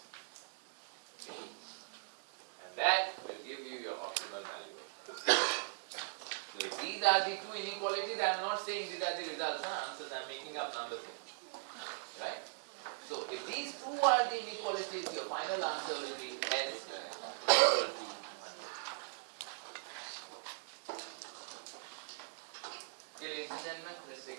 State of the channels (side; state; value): left; silent; digital silence